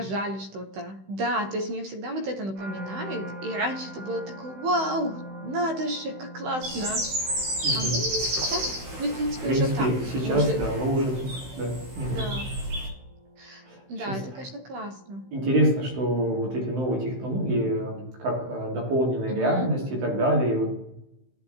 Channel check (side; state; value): left; late; 16 ms